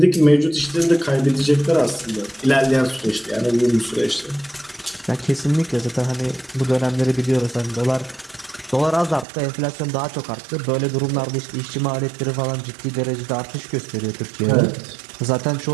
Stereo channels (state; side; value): drops out; left; at 9.2 s